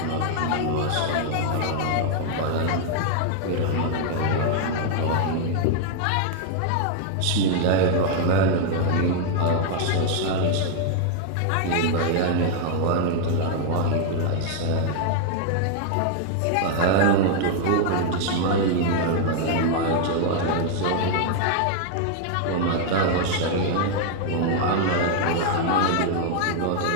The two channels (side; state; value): both; different; correlation 0.00